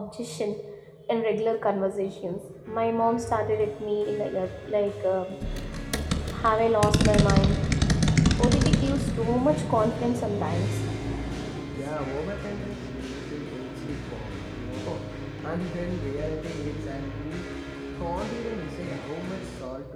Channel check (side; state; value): both; identical; correlation 1.00